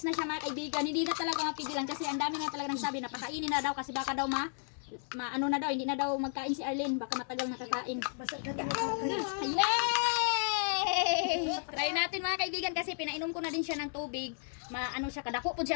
na siya mga kaibigan. Hindi na talaga mapigilan kasi ang dami nga talaga nagsabi na pakainin na daw kasi baka daw ano na daw, hindi na daw magkain si Arlene, baka matagal nakakain. Yay! Try natin mga kaibigan kasi pinainom ko na din siya ng tubig. Maano siya, kadako po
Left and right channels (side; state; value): right; silent; 55 dB below the other